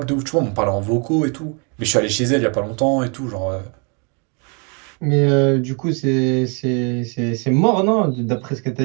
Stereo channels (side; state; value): left; quieter; 35.2 dB